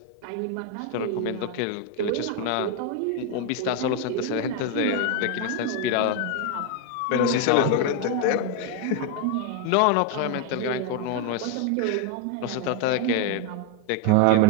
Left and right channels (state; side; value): different; both; correlation 0.01